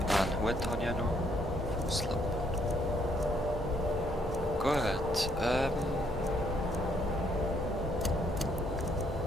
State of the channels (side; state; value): both; normal; correlation 0.69